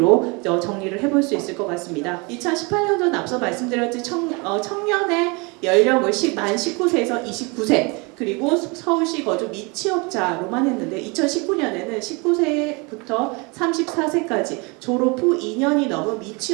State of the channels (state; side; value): quieter; left; 29.2 dB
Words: 정리를 해볼 수 있을 것 같습니다. 2018년도는 앞서 말씀드렸듯이 청년의 연령을 만 19세에서 29세 그리고 서울시 거주 미취업자로만 했는데 2019년에는 19세부터 34세까지 졸업 후 2년이 넘은